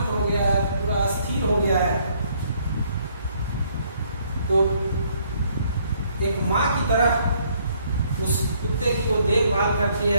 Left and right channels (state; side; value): inverted; both; correlation -0.67